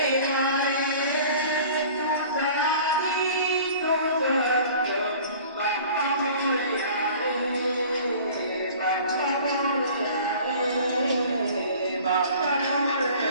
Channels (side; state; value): both; inverted; correlation -0.46